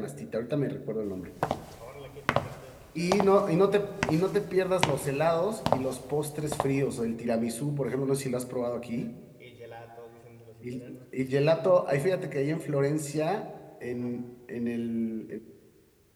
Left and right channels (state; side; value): identical; both; correlation 1.00